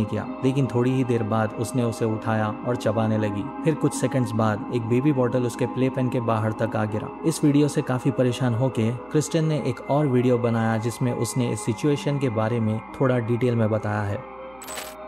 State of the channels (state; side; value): noise; right; hum, 28 dB below the sound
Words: किया, लेकिन थोड़ी ही देर बाद उसने उसे उठाया और चबाने लगी। फिर कुछ सेकंड्स बाद एक बेबी बॉटल उसके प्ले पेन के बाहर तक आ गिरा। इस वीडियो से काफी परेशान होके क्रिस्टन ने एक और वीडियो बनाया जिसमें उसने इस सिचुएशन के बारे में थोड़ा डिटेल में बताया है।